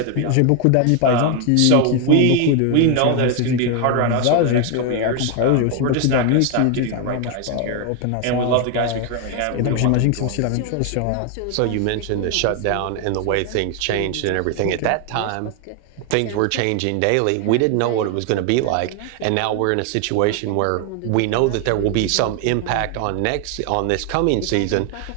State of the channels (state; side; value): different; both; correlation 0.01